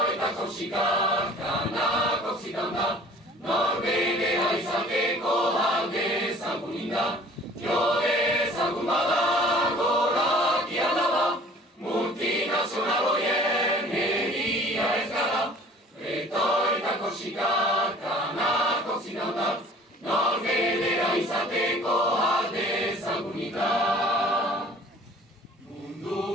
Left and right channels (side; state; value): both; normal; correlation 0.50